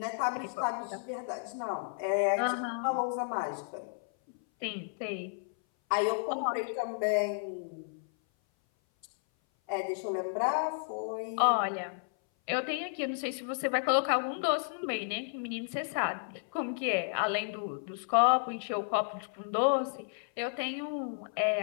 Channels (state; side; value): silent; right; 56 dB below the other